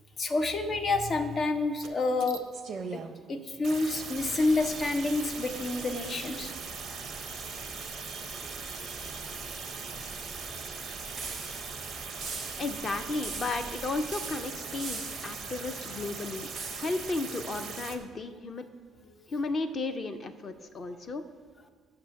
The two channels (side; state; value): both; normal; correlation 0.78